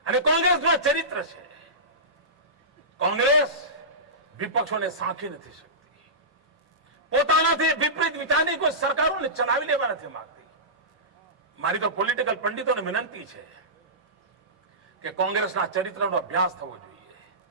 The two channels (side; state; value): both; normal; correlation -0.19